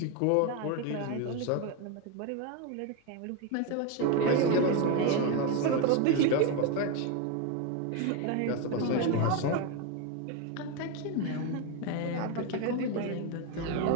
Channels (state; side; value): different; both; correlation 0.02